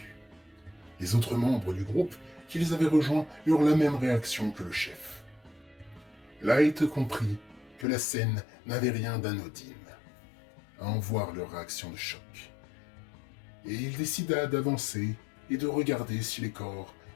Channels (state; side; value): drops out; right; at 7.9 s